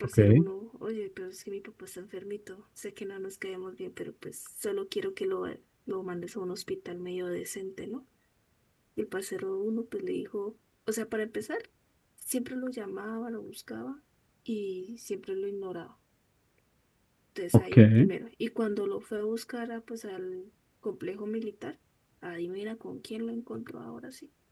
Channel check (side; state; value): both; identical; correlation 1.00